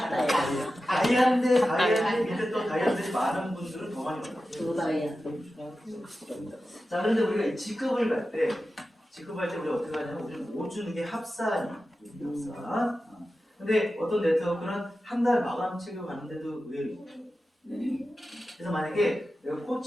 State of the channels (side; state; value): both; normal; correlation 0.93